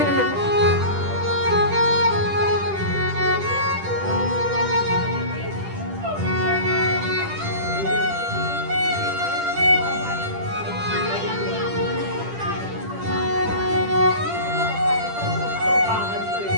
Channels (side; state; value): left; late; 10 ms